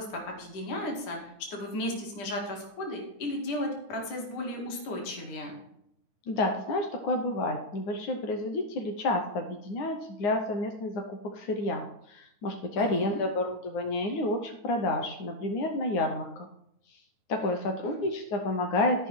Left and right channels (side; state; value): right; late; 9.4 ms